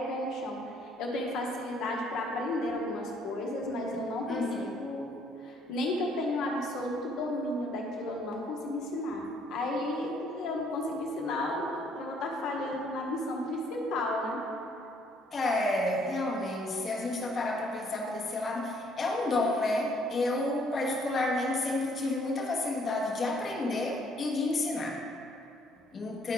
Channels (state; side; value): normal; both; correlation 0.65